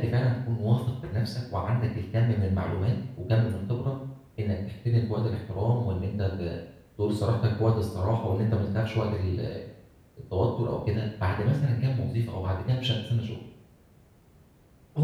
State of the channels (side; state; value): both; identical; correlation 1.00